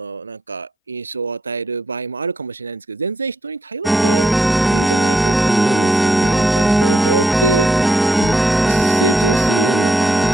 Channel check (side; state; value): both; normal; correlation 0.79